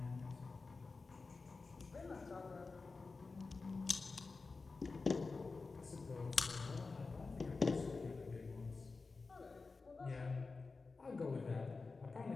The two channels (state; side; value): quieter; right; 4.1 dB